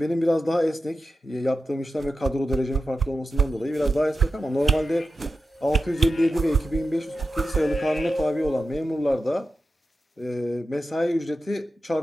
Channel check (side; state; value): both; normal; correlation 0.91